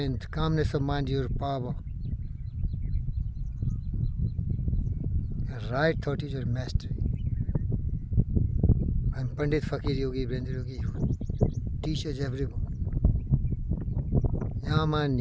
Calmness of mind is your power. And right thought is your mastery. I'm Pandit Fakir Yogi Brendra Yogi who teaches everyone.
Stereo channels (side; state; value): both; identical; correlation 1.00